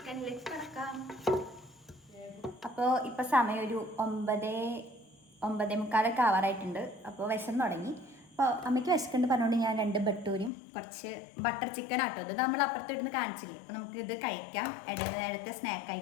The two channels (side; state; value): right; drops out; at 10.5 s